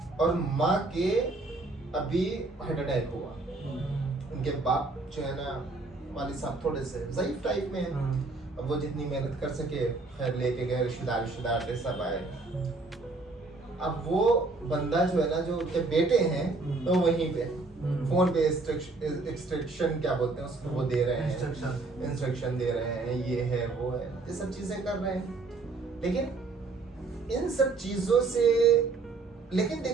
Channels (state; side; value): quieter; left; 3.6 dB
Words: और माँ के अभी हार्ट अटैक हुआ। उनके बाप जो है ना, वालिद साहब थोड़े से ज़ईफ टाइप में हैं। अब वो जितनी मेहनत कर सके, खैर लेके गए, रिश्तेदार सब आए। अब वो बंदा जो है ना, जो उनके बेटे हैं, तो वहीं पे फोन पे इंस्ट्रक्शन क्या बोलते हैं उसको, वो दे रहे हैं, इंस्ट्रक्शन दे रहे हैं, ये है वो है, ये सब चीजें कर रहे हैं। लेकिन इन सब चीजों से, लेकिन